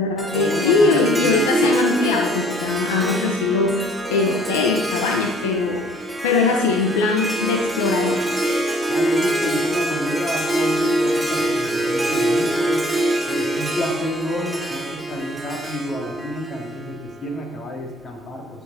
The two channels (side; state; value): both; normal; correlation 0.55